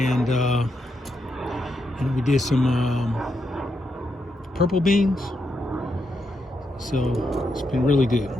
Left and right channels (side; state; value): both; normal; correlation 0.82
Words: we did some purple beans. So it's been really good,